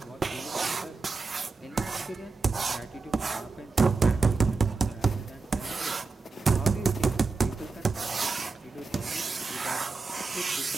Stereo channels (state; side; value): quieter; left; 4.1 dB